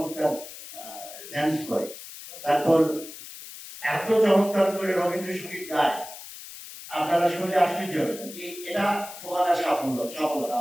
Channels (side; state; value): left; noise; hiss, 14 dB below the sound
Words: ড্যান্স করে, তারপর এত চমৎকার করে রবীন্দ্রসঙ্গীত গায়, আপনারা শুনলে আশ্চর্য হবেন। এটা ফোবানার সফলতা